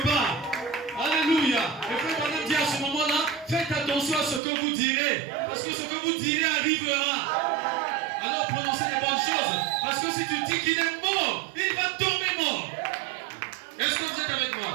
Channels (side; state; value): left; drops out; at 4.4 s